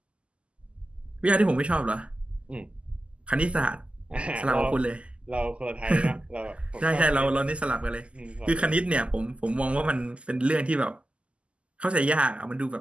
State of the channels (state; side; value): late; left; 0.055 ms